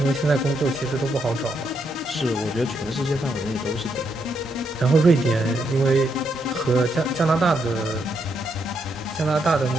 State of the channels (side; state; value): both; normal; correlation 0.78